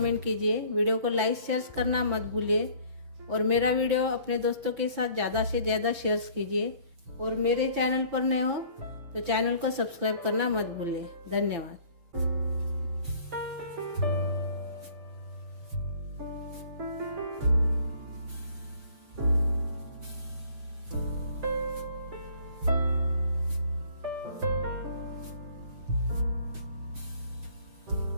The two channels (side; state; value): left; late; 6.0 ms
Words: कीजिए। वीडियो को लाइक शेयर करना मत भूलिए और मेरा वीडियो अपने दोस्तों के साथ ज़्यादा से ज़्यादा शेयर कीजिए। और मेरे चैनल पर नए हो तो चैनल को सब्सक्राइब करना मत भूलिए। धन्यवाद।